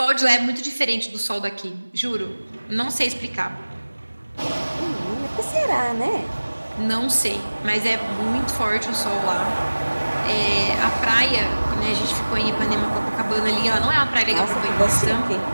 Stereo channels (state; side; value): inverted; both; correlation -1.00